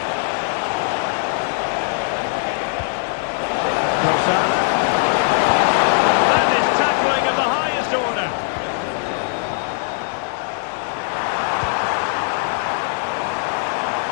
Trossard. And his tackling of the highest order.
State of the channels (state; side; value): silent; right; 65 dB below the other